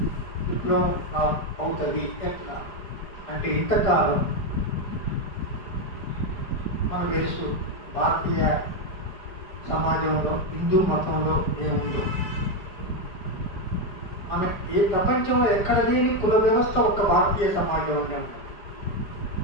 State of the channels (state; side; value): late; right; 4.9 ms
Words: విప్లవం అవుతుంది. ఎట్లా అంటే ఇంతకాలం మనకు తెలుసు భారతీయ సమాజంలో హిందూ మతంలో ఏముందో, మన ఏ ప్రపంచంలో ఎక్కడ లేని కుల వ్యవస్థ ఒక భారతీయ సమాజంలోనే ఉంది.